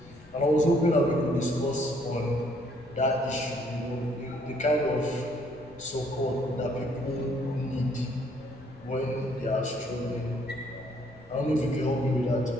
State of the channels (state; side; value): noise; left; rumble, 25 dB below the sound